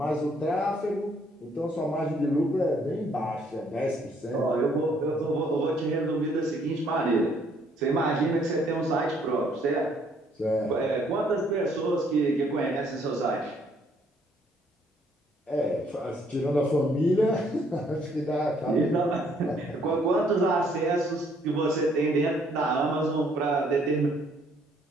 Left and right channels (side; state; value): both; normal; correlation 0.66